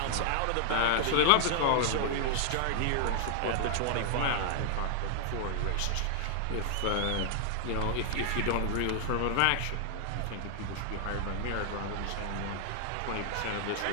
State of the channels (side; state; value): both; different; correlation 0.00